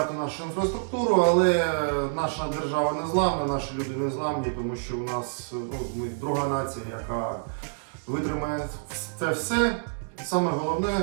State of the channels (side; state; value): left; silent; digital silence